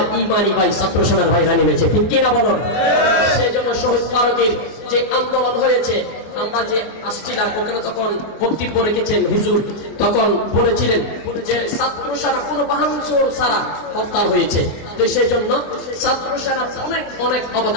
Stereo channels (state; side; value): late; right; 24 ms